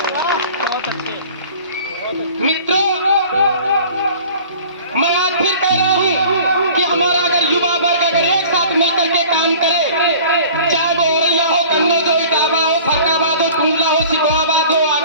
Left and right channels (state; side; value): inverted; both; correlation -0.45